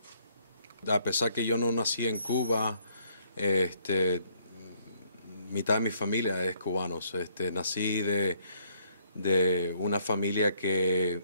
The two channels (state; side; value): inverted; both; correlation -0.67